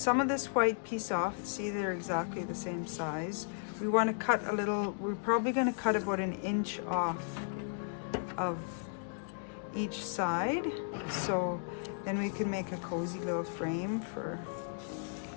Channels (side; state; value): right; silent; digital silence